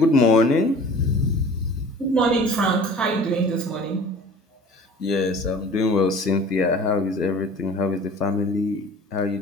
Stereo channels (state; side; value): normal; both; correlation 0.45